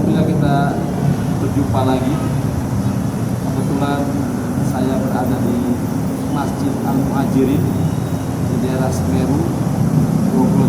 kita berjumpa lagi. Kebetulan saya berada di Masjid Al-Muhajirin di daerah Semeru,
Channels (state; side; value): identical; both; correlation 1.00